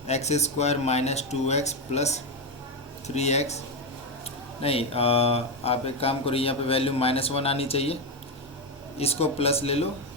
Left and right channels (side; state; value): both; normal; correlation 0.09